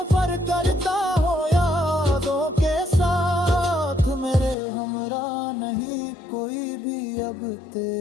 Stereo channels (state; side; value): drops out; right; at 4.5 s